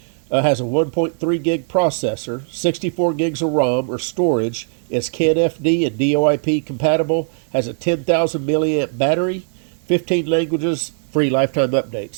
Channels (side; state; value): left; silent; digital silence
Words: Has a 1.3 gig processor, 64 gigs of ROM or storage, is CAN FD and DOIP compatible, has a 10,000 milliamp battery, 15 languages, free lifetime